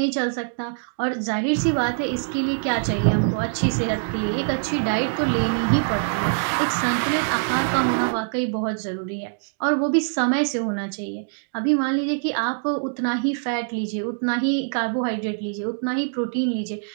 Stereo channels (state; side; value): silent; left; digital silence